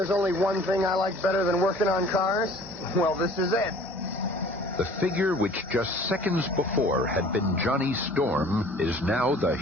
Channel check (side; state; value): both; normal; correlation 0.50